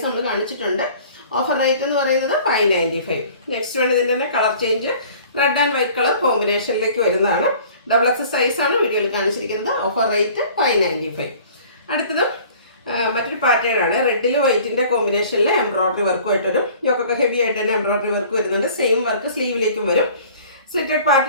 നമ്മൾ കാണിച്ചിട്ടുണ്ട്. ഓഫർ റേറ്റ് എന്ന് പറയുന്നത് 595. നെക്സ്റ്റ് വൺ ഇതിൻ്റെ തന്നെ colour change red and white colour കോമ്പിനേഷനിലേക്ക് വരുന്നതാണ്. XXL സൈസാണ് വീഡിയോയിൽ കാണിച്ചിരിക്കുന്നത്. Offer rate 595. അടുത്തതും മറ്റൊരു പാറ്റേൺ ആണ്. റെഡിൽ വൈറ്റിൻ്റെ കോമ്പിനേഷനിൽ എംബ്രോയിഡറി വർക്കുമായിട്ട് വരും. യോക്കൊക്കെ ഹെവി ആയിട്ട് തന്നെ എംബ്രോയിഡറി വർക്ക് വരുന്നുണ്ട്. സെയിം വർക്ക് സ്ലീവിലേക്കും വരും. സ്ലിറ്റഡ്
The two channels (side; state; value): both; inverted; correlation -0.49